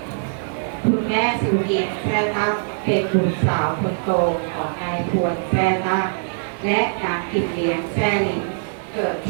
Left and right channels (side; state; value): left; silent; digital silence